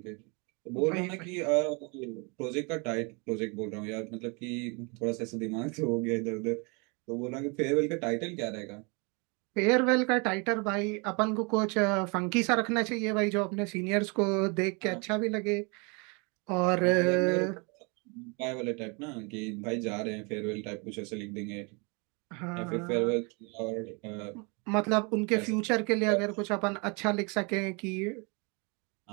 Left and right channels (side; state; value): left; quieter; 31.8 dB